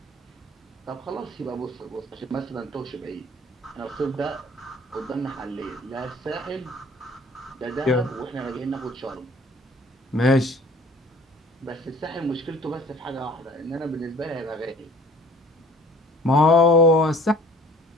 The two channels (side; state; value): both; normal; correlation 0.51